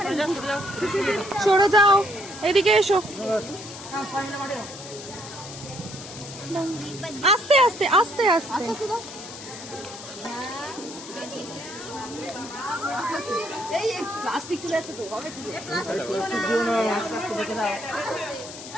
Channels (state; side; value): noise; left; hiss, 13 dB below the sound